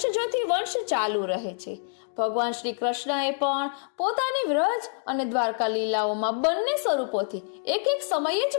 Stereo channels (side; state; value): right; silent; digital silence